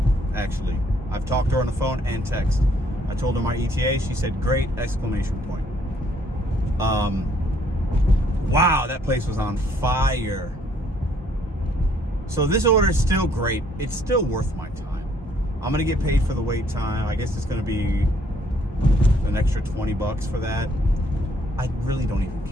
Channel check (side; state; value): both; normal; correlation 0.66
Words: actually. I've talked to her on the phone and text. I told her my ETA. She said, great, exclamation point. Wow, that place was on fire. So this order is still great. It's still worth my time. I'm going to get paid for the wait time. I guess it's going to be an extra $20 for that. I really don't even